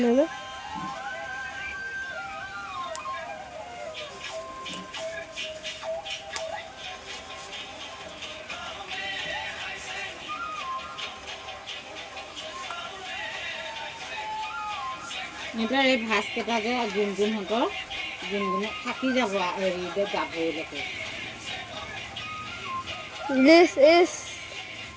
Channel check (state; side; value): identical; both; correlation 1.00